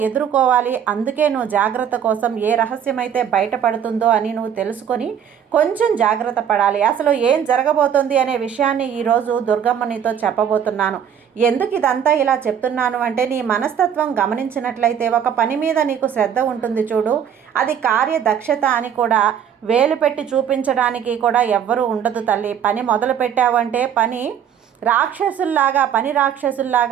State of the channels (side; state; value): left; quieter; 8.6 dB